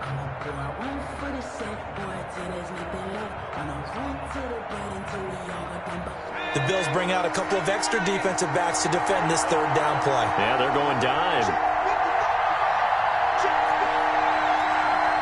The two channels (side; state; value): both; identical; correlation 1.00